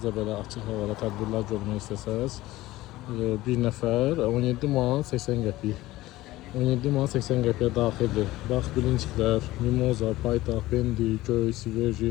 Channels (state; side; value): quieter; right; 17.3 dB